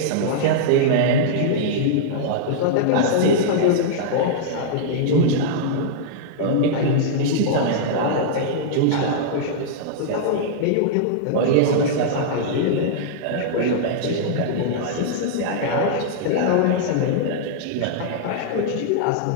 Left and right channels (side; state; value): both; different; correlation -0.02